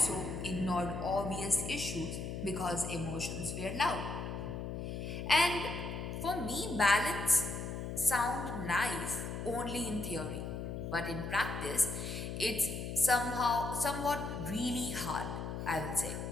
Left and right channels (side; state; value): left; noise; hum, 5 dB below the sound